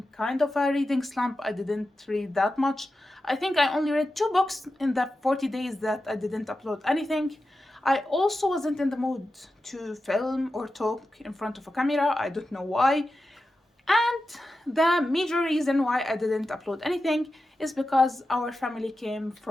kind of a reading slump. I didn't read that much. I think I only read 2 books in the 40 days that I didn't upload anything. I also wasn't in the mood to film or talk in front of a camera. I don't know why. And the major reason why I didn't upload anything is because our family came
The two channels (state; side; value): normal; both; correlation 0.92